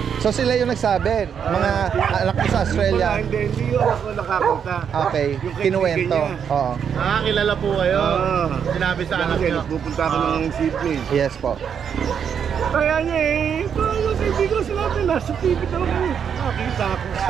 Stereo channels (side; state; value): left; quieter; 7.6 dB